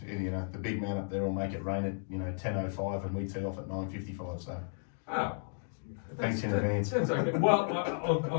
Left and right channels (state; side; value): silent; right; digital silence